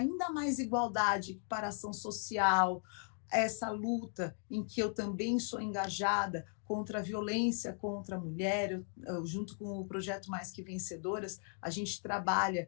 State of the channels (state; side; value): silent; right; 53 dB below the other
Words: mais igualdade, equiparação social, essa luta em que eu também sou engajada contra a violência contra a mulher, junto com o projeto Mais Que Vencedoras, a gente trabalha